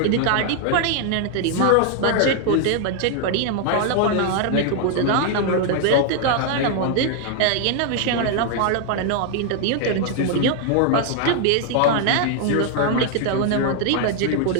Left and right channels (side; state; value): both; different; correlation 0.00